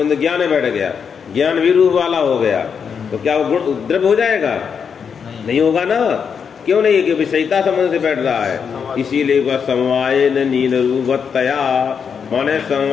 ज्ञान में बैठ गया, ज्ञान भी रूप वाला हो गया, तो क्या वो गुण द्रव्य हो जाएगा? नहीं होगा ना। क्यों नहीं? कि विषयिता संबंध से बैठ रहा है। इसीलिए वह समवायेन नील रूपवत्तया, माने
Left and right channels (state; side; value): quieter; right; 6.7 dB